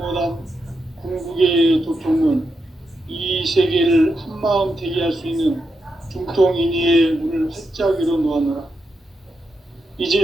궁극의 도통문, 이 세계를 한마음 되게 할 수 있는 중통인의의 문을 활짝 열어놓았노라.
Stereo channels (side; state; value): both; normal; correlation 0.85